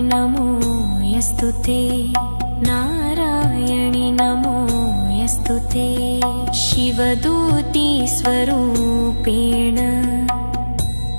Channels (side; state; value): both; inverted; correlation -1.00